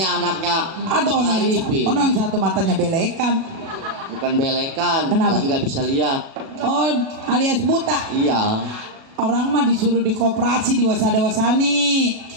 anaknya. Atau orang yang satu matanya belekan. Bukan belekan. Kenapa? Nggak bisa lihat. Oh, alias buta. Iya. Orang mah disuruh di koperasi di Wasada-Wasani.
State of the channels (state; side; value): late; left; 36 ms